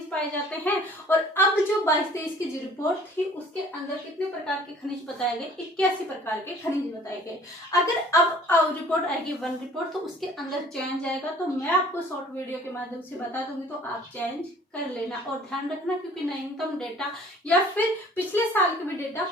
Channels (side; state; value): both; normal; correlation 0.52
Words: पाए जाते हैं। और अब जो 22-23 की जो रिपोर्ट थी उसके अंदर कितने प्रकार के खनिज बताए गए, 81 प्रकार के खनिज बताए गए। अगर अब रिपोर्ट आएगी वन रिपोर्ट, तो उसके अंदर चेंज आएगा, तो मैं आपको शॉर्ट वीडियो के माध्यम से बता दूंगी, तो आप चेंज कर लेना और ध्यान रखना, क्योंकि नवीनतम डेटा या फिर पिछले साल के भी डेटा